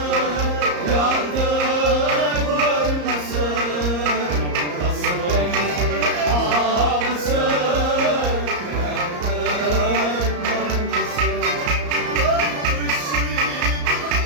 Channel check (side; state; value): left; late; 34 ms